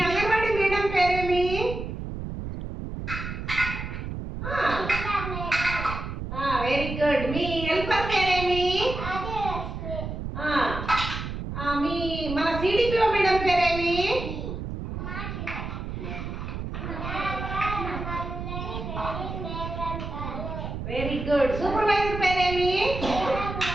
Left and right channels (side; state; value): right; noise; rumble, 6 dB below the sound